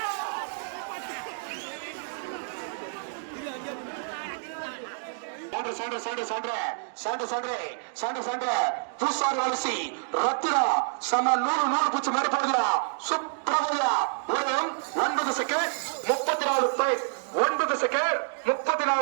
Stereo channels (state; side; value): silent; left; digital silence